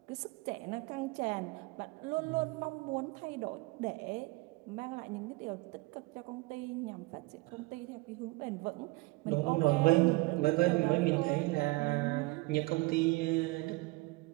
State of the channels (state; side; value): quieter; left; 23.4 dB